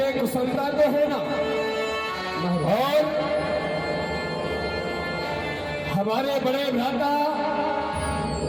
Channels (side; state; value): both; identical; correlation 1.00